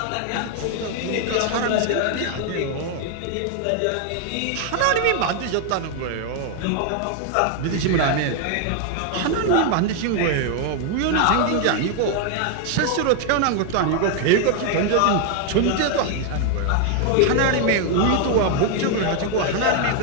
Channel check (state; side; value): different; both; correlation 0.00